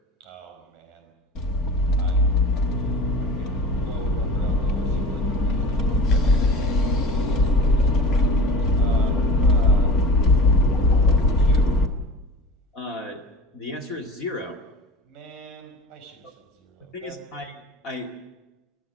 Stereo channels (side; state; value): both; normal; correlation 0.37